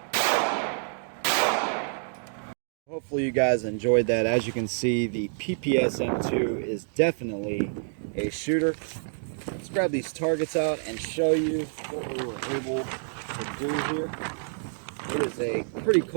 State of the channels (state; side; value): silent; left; 60 dB below the other